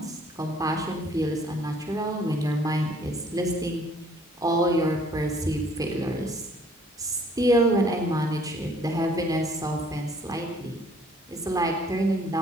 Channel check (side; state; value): both; normal; correlation 0.60